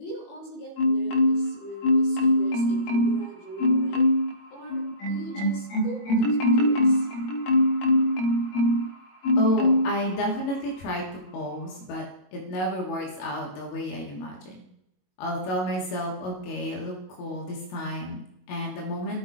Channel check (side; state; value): right; late; 22 ms